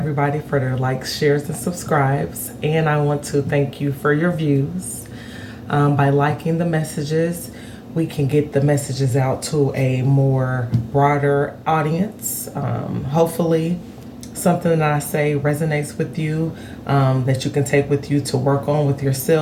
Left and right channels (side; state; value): both; identical; correlation 1.00